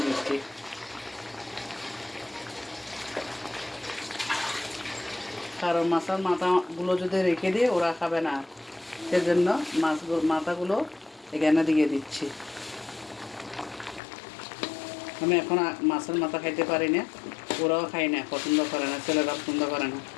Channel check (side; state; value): right; drops out; at 14.0 s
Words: দিচ্ছি। কারণ মাছের মাথাগুলো যদি রেখে দিয়ে ওরা খাবে না, সেজন্য মাথাগুলো এখানে দিয়ে দিচ্ছি। আমি এখন মাছের মাথা খাইতে পারি না, ওরাও খাই না, পছন্দ করে না, ছেলেরা পছন্দ করে না।